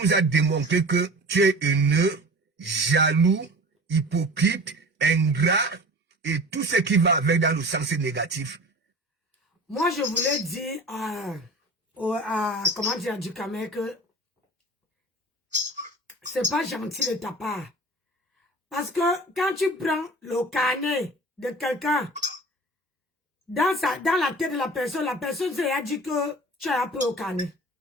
as démontré que tu es haineux, jaloux, hypocrite, ingrat, et tout ce qui va avec dans le sens négatif. Moi, je voulais dire comment dire, du Cameroun que c'est pas gentil de ta part. Parce que quand tu prends le carnet de quelqu'un, dans la tête de la personne s'est dit que tu as appris au carnet.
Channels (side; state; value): both; normal; correlation 0.39